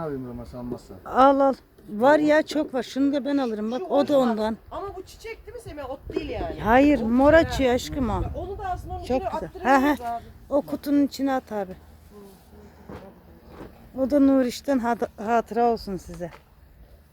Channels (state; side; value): identical; both; correlation 1.00